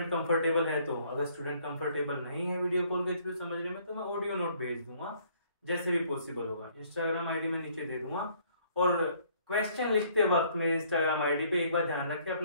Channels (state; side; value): inverted; both; correlation -0.62